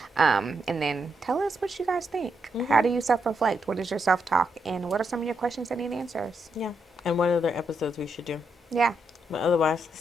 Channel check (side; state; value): both; normal; correlation 0.81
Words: And then tell us what you guys think. How do you self reflect? What is your self talk? And what are some of your questions that need answers? Yeah, and what other episodes we should do. Yeah. But otherwise,